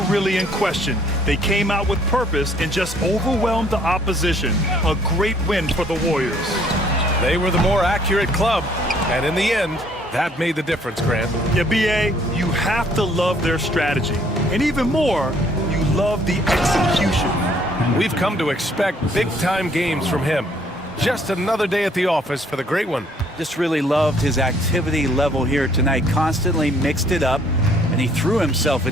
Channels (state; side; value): normal; both; correlation 0.62